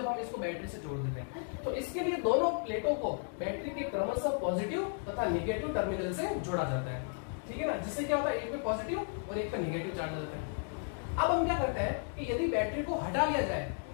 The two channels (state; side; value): silent; right; 55 dB below the other